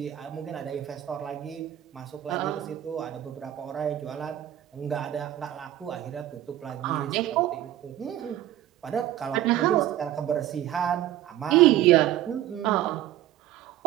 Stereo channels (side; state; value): left; quieter; 12.9 dB